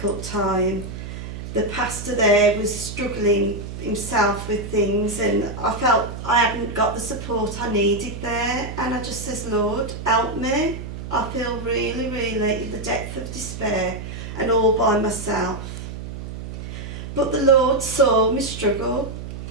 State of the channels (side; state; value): right; noise; hum, 9 dB below the sound